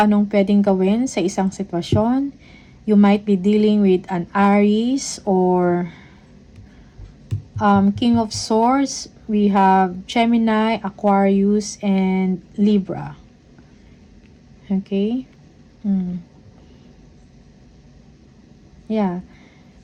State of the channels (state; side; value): identical; both; correlation 1.00